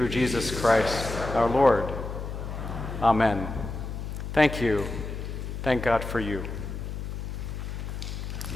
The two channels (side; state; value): left; noise; hum, 6 dB below the sound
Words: Jesus Christ, our Lord. Amen. Thank you. Thank God for you.